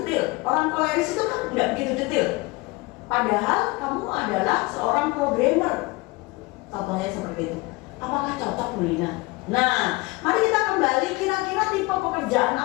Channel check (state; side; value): quieter; right; 23.6 dB